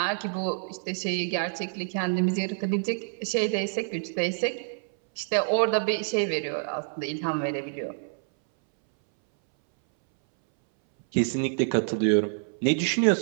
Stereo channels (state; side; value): silent; left; 60 dB below the other